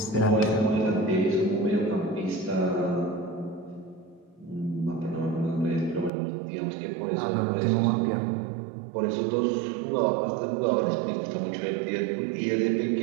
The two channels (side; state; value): left; drops out; at 6.1 s